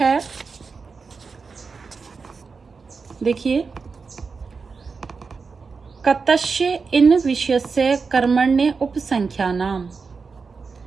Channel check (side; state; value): left; quieter; 4.9 dB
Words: देखिए कतस्य इन विषयस्य कर्मण्य उपसंख्यानाम।